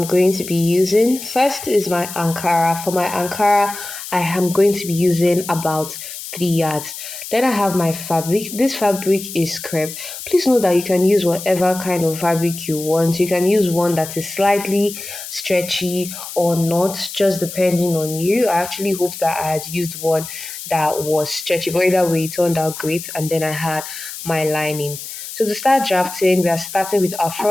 going to be using. First is my Ankara. For my Ankara, I am going to be using about 3 yards. Then I have my fabric. This fabric is crepe. Please note that you can use whatever kind of fabric you want. You can use one that is slightly stretchy or not, just depending on you. I actually hope that I had used one that was stretchy, but either way, it turned out great. And then I had my lining. So to start drafting, we are starting with our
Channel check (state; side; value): noise; left; hiss, 10 dB below the sound